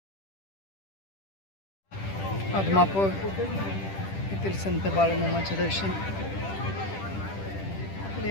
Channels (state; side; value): late; right; 10 ms